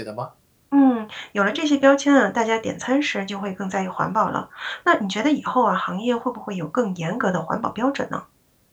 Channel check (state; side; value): identical; both; correlation 1.00